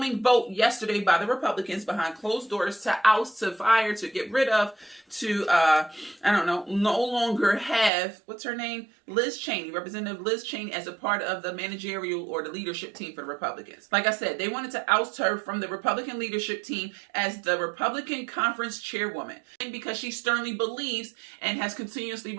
vote yesterday by the Republicans behind closed doors to oust, to fire, to get rid of, to, no longer have, what's her name? Liz Cheney, Representative Liz Cheney, as a part of the managerial or the leadership team for the Republicans. Like I said, they wanted to oust her from the Republican leadership team as the Republican conference chairwoman. And because she sternly believes and has continuously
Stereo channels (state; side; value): drops out; left; at 7.9 s